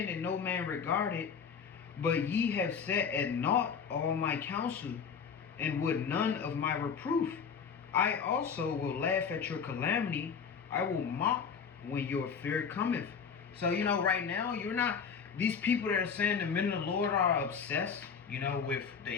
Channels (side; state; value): right; quieter; 6.5 dB